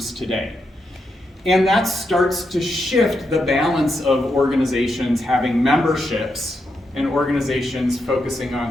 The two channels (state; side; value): normal; both; correlation 0.83